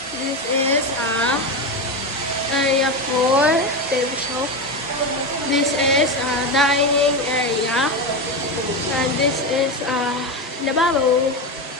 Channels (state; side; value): normal; both; correlation 0.16